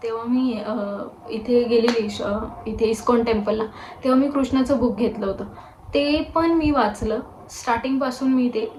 मी इथे गेलेली इथे इस्कॉन टेम्पलला. तेव्हा मी कृष्णाचं बुक घेतलं होतं. ते पण मी वाचलं. स्टार्टिंगपासून मी ते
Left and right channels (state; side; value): identical; both; correlation 1.00